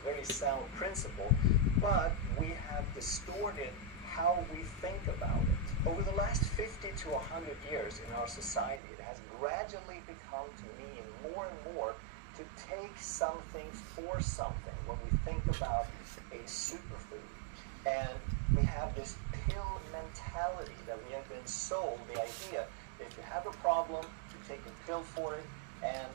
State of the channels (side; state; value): left; drops out; at 8.8 s